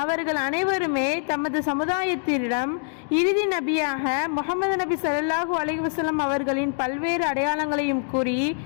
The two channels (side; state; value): right; silent; digital silence